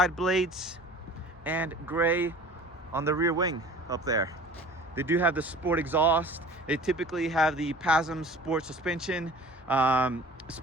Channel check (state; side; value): normal; both; correlation 0.44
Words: blades, and gray on the rear wing up there. They do have the sport exhaust. They typically have the PASM sport suspension,